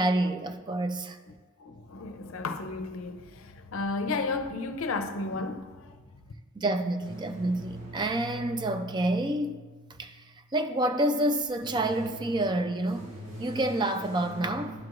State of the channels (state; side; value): normal; both; correlation 0.50